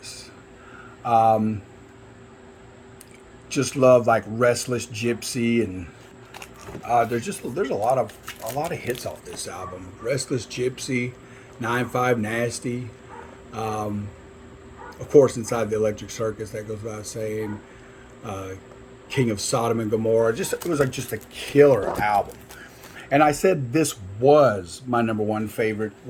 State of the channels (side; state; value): both; identical; correlation 1.00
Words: Um, just love like Restless Gypsy, and there's a lot of hits off this album. Restless Gypsy, 9-5 Nasty, um, of course Inside the Electric Circus, that goes without saying. Uh, King of Sodom and Gomorrah. Just it was like just a killer album. And I said this was my number one favorite